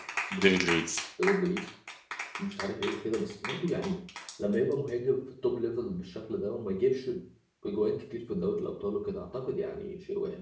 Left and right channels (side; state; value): both; identical; correlation 1.00